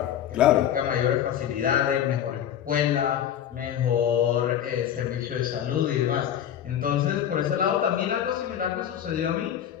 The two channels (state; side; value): quieter; right; 10.1 dB